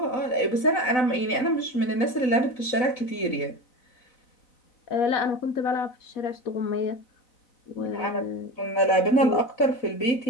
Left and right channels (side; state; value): right; late; 4.0 ms